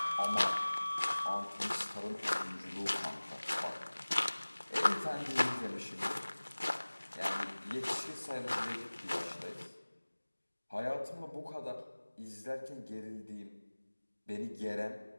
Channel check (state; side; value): inverted; both; correlation -1.00